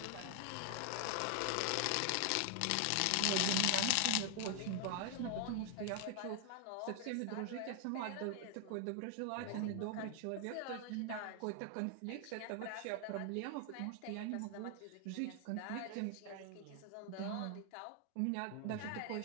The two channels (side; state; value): both; different; correlation 0.00